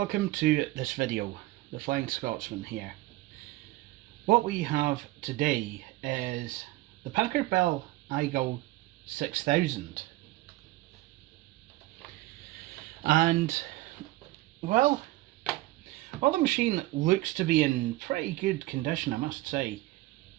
to this video. The Flying Scotsman here. What we have today is the Packard Bell iGo 6000, and well, while the machine looks to be in pretty good condition, I must say,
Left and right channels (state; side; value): quieter; left; 18.6 dB